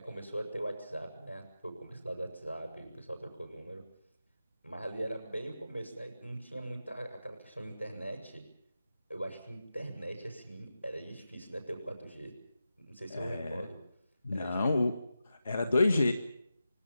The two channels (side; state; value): both; inverted; correlation -0.90